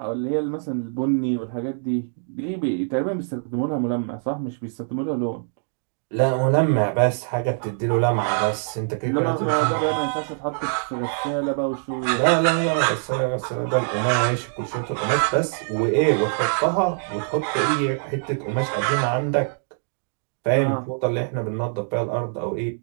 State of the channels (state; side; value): silent; left; digital silence